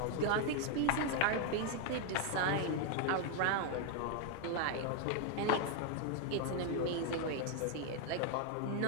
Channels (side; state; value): both; different; correlation 0.00